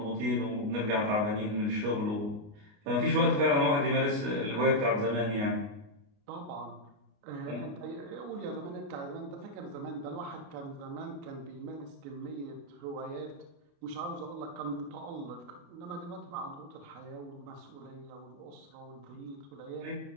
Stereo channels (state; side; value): late; left; 29 ms